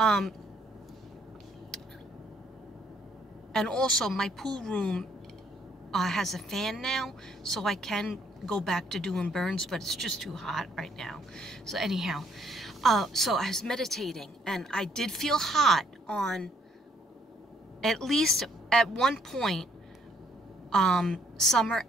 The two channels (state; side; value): normal; both; correlation 0.66